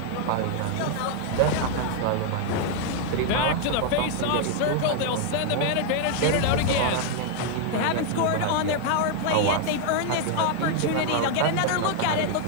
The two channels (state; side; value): different; both; correlation 0.00